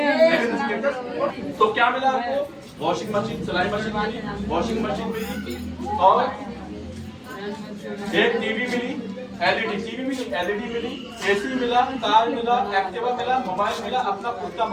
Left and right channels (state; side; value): identical; both; correlation 1.00